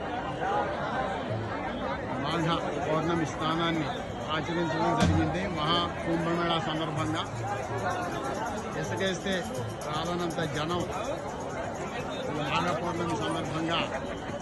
మాఘ పౌర్ణమి స్నానాన్ని ఆచరించడం జరిగింది. మహా కుంభమేళా సందర్భంగా ఇసుకేస్తే రాలనంత జనం మాఘ పౌర్ణమి సందర్భంగా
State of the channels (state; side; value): identical; both; correlation 1.00